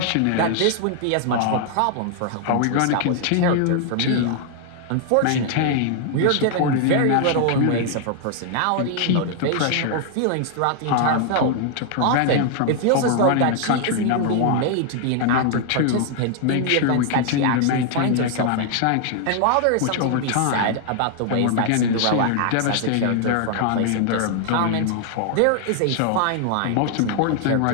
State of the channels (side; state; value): both; different; correlation 0.00